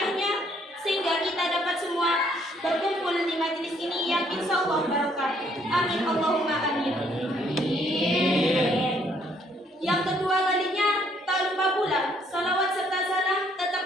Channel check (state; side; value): normal; both; correlation 0.66